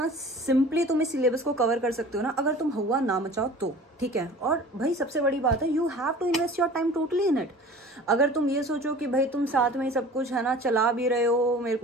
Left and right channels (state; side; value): normal; both; correlation 0.43